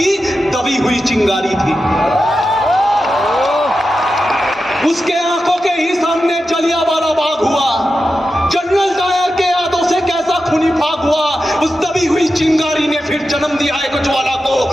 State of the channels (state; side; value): normal; both; correlation 0.91